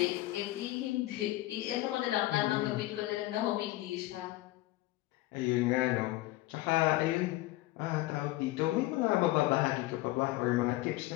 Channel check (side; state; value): right; quieter; 17.8 dB